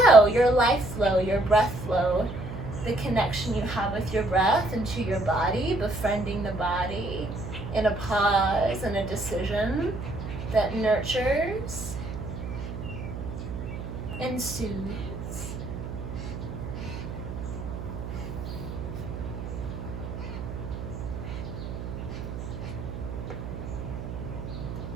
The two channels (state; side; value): noise; right; hum, 7 dB below the sound